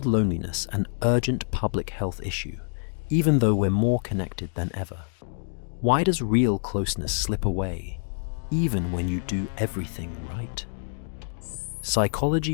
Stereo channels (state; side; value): silent; right; digital silence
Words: loneliness an urgent public health issue, even though we're more connected than ever. Why does real closeness slip away, even when you do everything right?